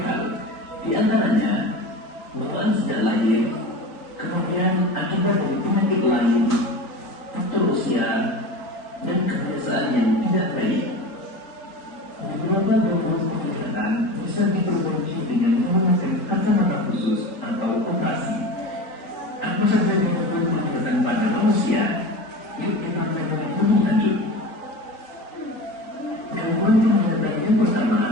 di antaranya bawaan sejak lahir, kemudian akibat dari penyakit lain, faktor usia, dan kebiasaan yang tidak baik. Beberapa gangguan penglihatan bisa diperbaiki dengan menggunakan kacamata khusus atau operasi. Apa saja gangguan penglihatan pada manusia? Yuk kita melihat lebih lanjut. Gangguan penglihatan yang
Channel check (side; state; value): right; late; 4.0 ms